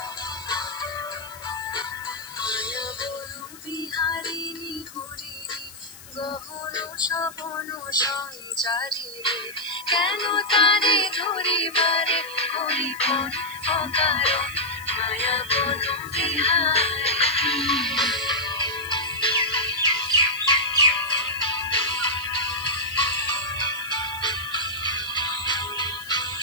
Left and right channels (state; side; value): noise; left; hiss, 18 dB below the sound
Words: বিহারিণী হরিণী গহন সপন সঞ্চারী কেন তারে ধরিবারে করিপন অকারণ মায়া বন বিহারিণী